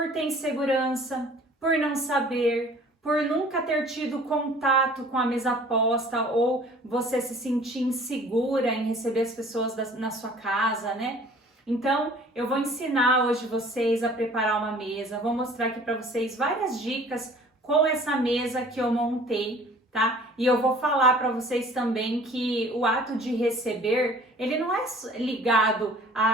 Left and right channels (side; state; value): both; normal; correlation 0.50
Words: ter insegurança, por não saber, por nunca ter tido contato com a mesa posta ou você se sentir insegura em receber as pessoas na sua casa, né? Então, eu vou ensinar hoje vocês a preparar uma mesa, vou mostrar aqui para vocês várias dicas com essa mesa que eu montei, tá? E eu vou falar para vocês também que o ato de receber, ele não é ligado